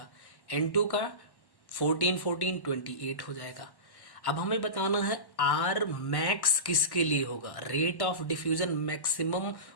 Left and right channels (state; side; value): late; right; 1.1 ms